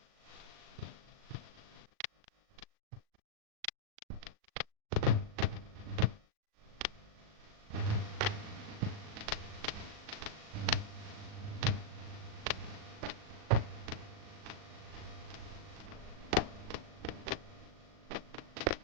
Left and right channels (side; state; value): left; late; 38 ms